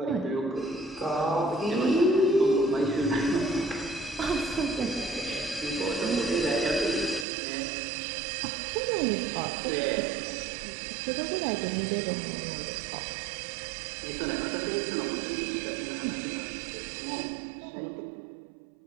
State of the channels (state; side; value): drops out; left; at 7.2 s